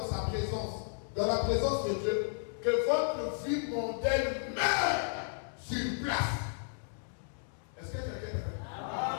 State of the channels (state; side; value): silent; right; digital silence